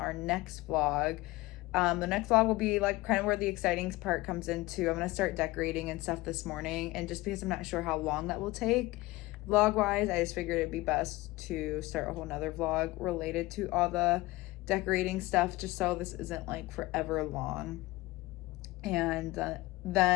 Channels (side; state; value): right; quieter; 20.0 dB